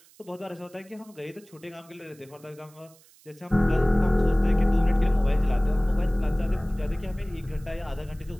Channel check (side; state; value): right; noise; hiss, 28 dB below the sound